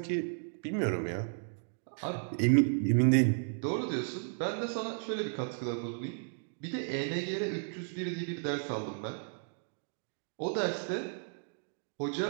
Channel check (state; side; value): silent; left; digital silence